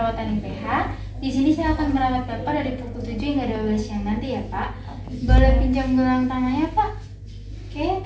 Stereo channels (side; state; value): both; identical; correlation 1.00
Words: IPH. Di sini saya akan merawat Bapak dari pukul 7 hingga 12 siang nanti ya Pak. Boleh pinjam gelang tangannya Pak? Oke,